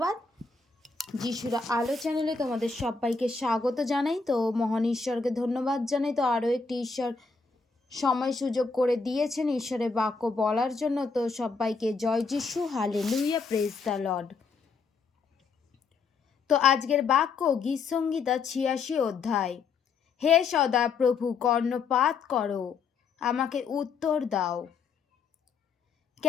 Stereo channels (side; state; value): right; quieter; 4.8 dB